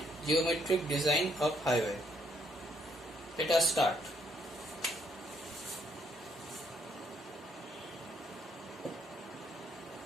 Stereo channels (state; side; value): normal; both; correlation 0.70